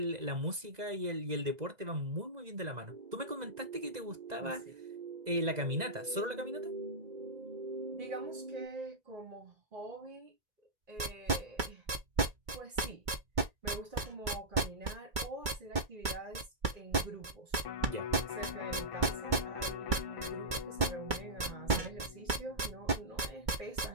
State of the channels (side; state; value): left; late; 2.2 ms